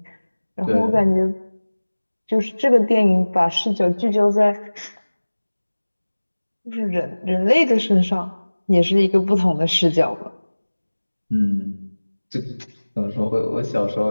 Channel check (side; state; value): both; inverted; correlation -1.00